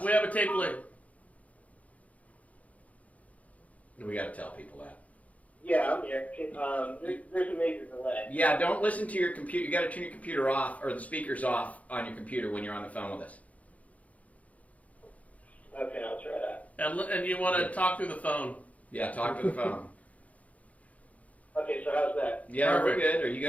We have a tape delay. We got to tell people that. Yeah, I'm here. There's a major delay. Yeah, don't listen to your computer. You got to turn your computer off or the speakers off on your computer when you're on the phone with us. Okay, I'll try that. And you want to talk through the phone. Yeah, talk to the phone. Okay, so how's that? Yeah, Perfect. we're good. Are you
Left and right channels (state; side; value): late; right; 0.069 ms